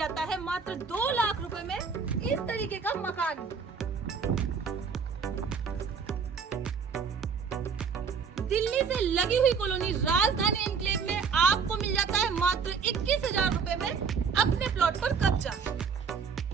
है मात्र 2 लाख रुपए में इस तरीके का मकान। दिल्ली से लगी हुई कॉलोनी राजधानी एनक्लेव में आपको मिल जाता है मात्र 21,000 रुपए में अपने प्लॉट पर कब्जा।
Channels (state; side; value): quieter; left; 5.9 dB